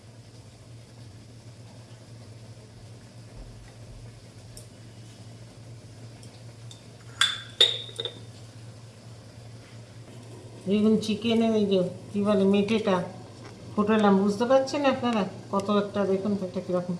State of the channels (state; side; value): identical; both; correlation 1.00